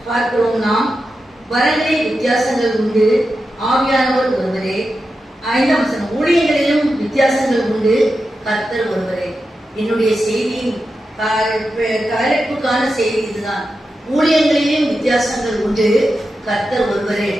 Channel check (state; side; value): normal; both; correlation 0.90